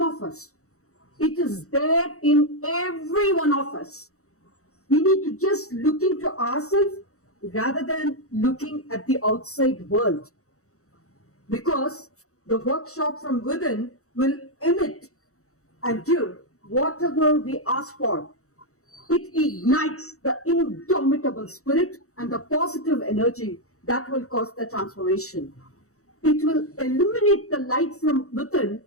of us. It is there in every one of us. We need to just look into ourselves rather than looking at the outside world. Because the workshop from within will emit and give whatever we ask for. It ignites the indomitable spirit and the positive energy that will cause the transformation. It will illuminate the light from within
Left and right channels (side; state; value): right; late; 0.64 ms